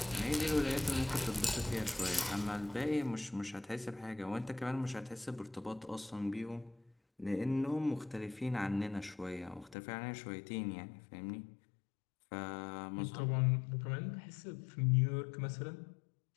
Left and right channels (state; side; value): drops out; right; at 9.8 s